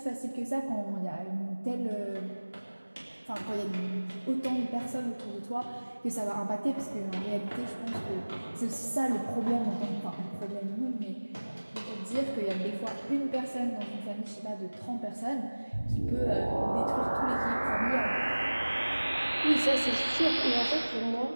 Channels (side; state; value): both; inverted; correlation -1.00